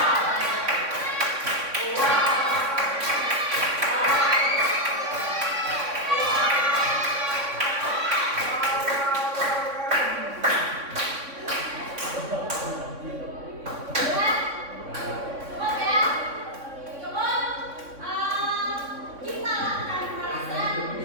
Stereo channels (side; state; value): left; late; 3.6 ms